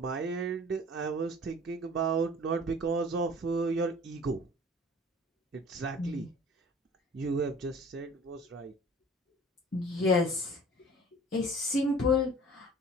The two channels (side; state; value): both; normal; correlation 0.46